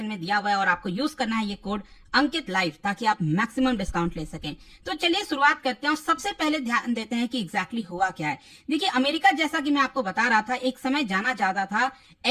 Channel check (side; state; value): both; identical; correlation 1.00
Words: में दिया हुआ है और आपको यूज करना है ये कोड अंकित लाइव ताकि आप मैक्सिमम डिस्काउंट ले सकें। तो चलिए शुरुआत करते हैं और सबसे पहले ध्यान देते हैं कि एग्जैक्टली हुआ क्या है। देखिए, अमेरिका जैसा कि मैं आपको बता रहा था एक समय जाना जाता था